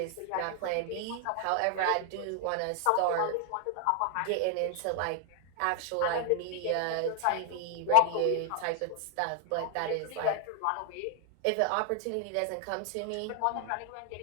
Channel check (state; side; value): different; both; correlation 0.00